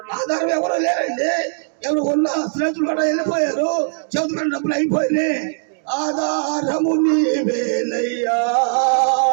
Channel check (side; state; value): left; silent; digital silence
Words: ఆధారం ఎవరు లేరండి. ఎవరు ఉన్న స్నేహితులు కూడా వెళ్ళిపోయారు, చదువుకున్న డబ్బులు అయిపోయినాయి. ఆధారము నీవేనయ్యా,